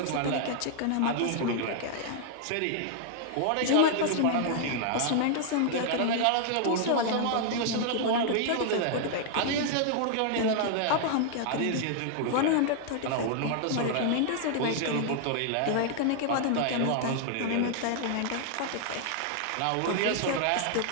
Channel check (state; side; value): different; both; correlation 0.00